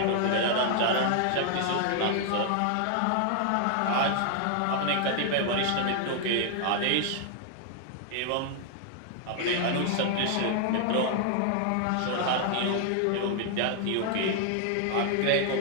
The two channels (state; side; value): different; both; correlation 0.00